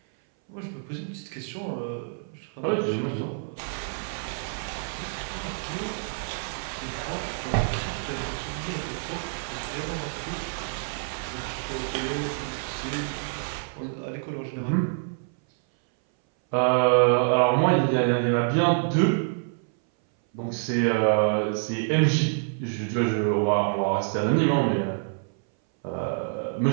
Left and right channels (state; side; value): silent; left; 59 dB below the other